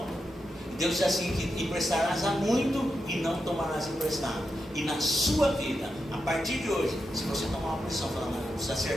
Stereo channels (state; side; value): normal; both; correlation 0.87